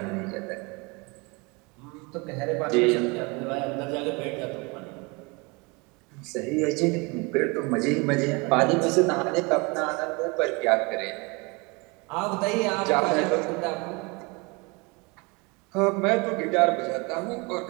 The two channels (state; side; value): quieter; left; 28.0 dB